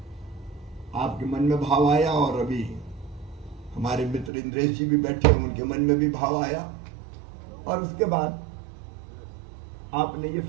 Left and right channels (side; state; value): left; drops out; at 4.3 s